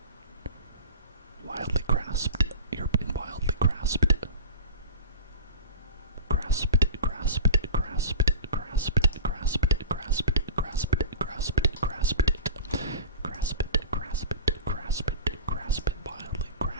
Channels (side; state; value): both; inverted; correlation -0.33